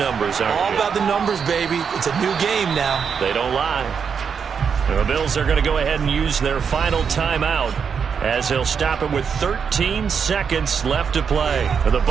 aren't you? All about the numbers, baby. It's a new game now. They don't lie. And the Bills are going to go ahead and use their final timeout as they'll stop it with 13 seconds left to play. And the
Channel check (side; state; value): left; quieter; 6.6 dB